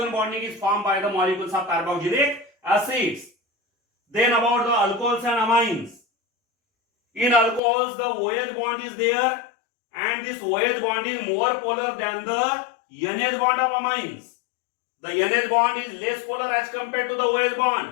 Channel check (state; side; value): drops out; right; at 7.6 s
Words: bonding is formed by the molecules of carboxylic acids. Then about the alcohols and amines. In alcohols the OH bond is there, and this OH bond is more polar than the NH bond of amines. The NH bond is less polar as compared to the OH